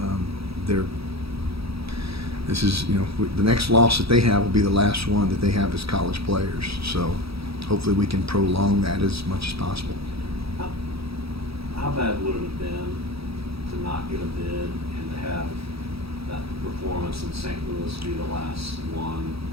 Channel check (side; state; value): left; late; 0.77 ms